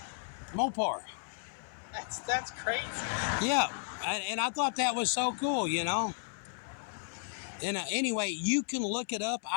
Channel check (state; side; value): silent; right; 55 dB below the other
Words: Mopar. That's crazy. Yeah, and I thought that was so cool, And anyway, you can look it up.